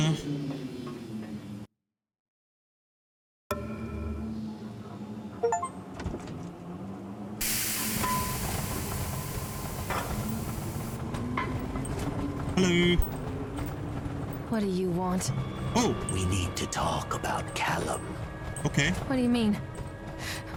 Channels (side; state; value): both; identical; correlation 1.00